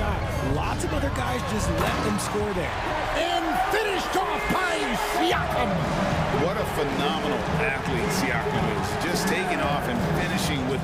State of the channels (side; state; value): both; identical; correlation 1.00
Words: Lots of other guys just let them score there. And finished off by Siakam. What a phenomenal athlete Siakam is. Just taking off and finishing with